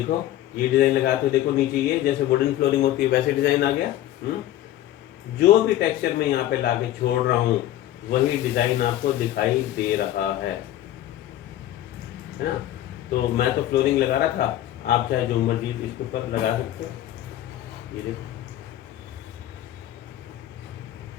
ये डिज़ाइन लगा तो देखो नीचे ये जैसे वुडन फ्लोरिंग होती है वैसे डिज़ाइन आ गया। जो भी टेक्सचर मैं यहाँ पे लाके छोड़ रहा हूँ वही डिज़ाइन आपको दिखाई दे रहा है ना। तो मैं तो फ्लोरिंग लगा रहा था, आप चाहे जो मर्जी इसके ऊपर लगा सकते हो। ये देखो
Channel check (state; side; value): quieter; right; 13.3 dB